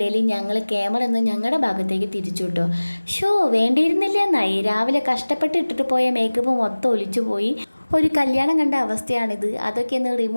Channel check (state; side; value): inverted; both; correlation -1.00